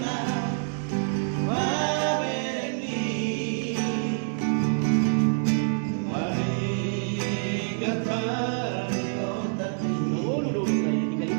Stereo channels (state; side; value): silent; left; digital silence